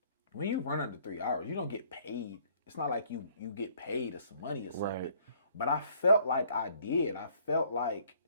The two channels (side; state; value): both; inverted; correlation -0.61